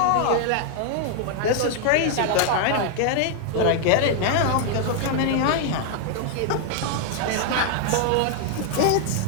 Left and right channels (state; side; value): different; both; correlation 0.00